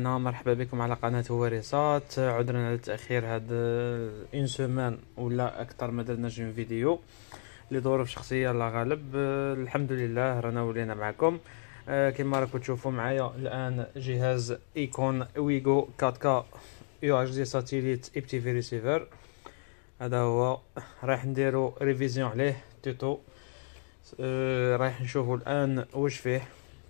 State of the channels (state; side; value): silent; right; digital silence